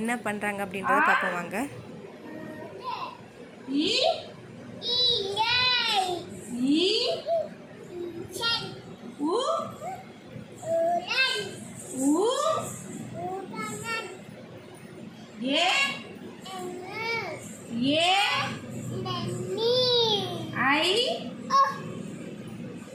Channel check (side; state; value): both; identical; correlation 1.00